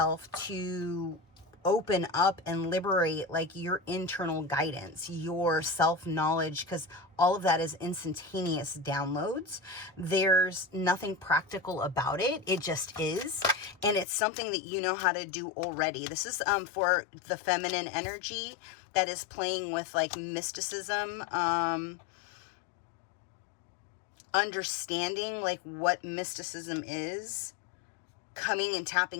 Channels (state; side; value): drops out; right; at 14.1 s